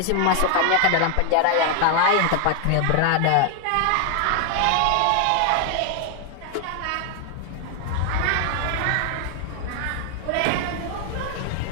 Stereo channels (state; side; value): different; both; correlation 0.00